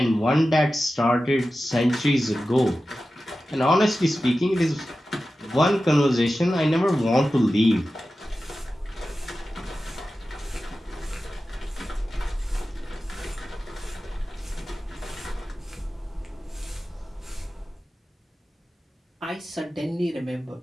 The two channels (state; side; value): normal; both; correlation 0.94